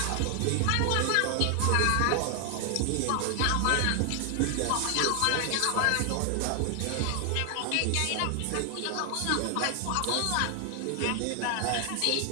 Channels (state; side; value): different; both; correlation 0.00